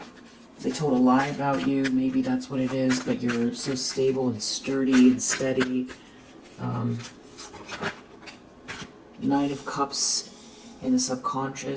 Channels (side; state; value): both; identical; correlation 1.00